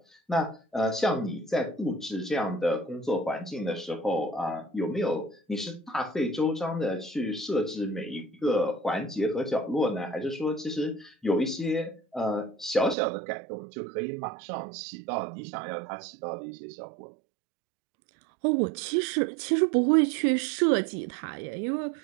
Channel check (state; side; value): drops out; left; at 13.0 s